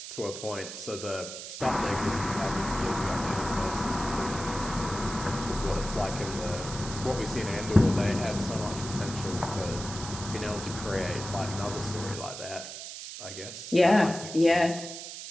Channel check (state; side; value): noise; right; hiss, 9 dB below the sound